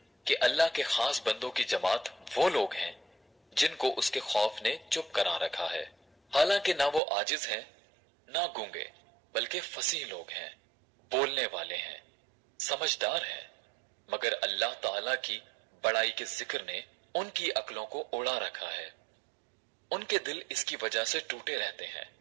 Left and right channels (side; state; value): left; drops out; at 7.0 s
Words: कि अल्लाह के खास बंदों की जमात वो लोग हैं जिनको उसके खौफ ने चुप करा रखा है। हालांकि ना वो आजिज हैं ना गूंगे, बल्कि फसीह लोग हैं, बोलने वाले हैं, समझदार हैं, मगर अल्लाह ताला की बड़ाई के जिक्र ने उनकी अक्लों को उड़ा रखा है। उनके दिल इसकी वजह से टूटे रहते हैं